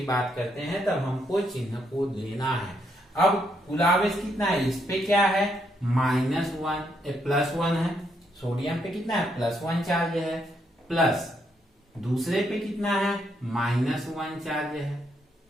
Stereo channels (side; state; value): both; normal; correlation 0.76